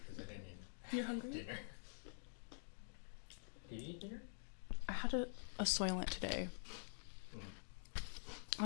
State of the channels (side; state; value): right; silent; digital silence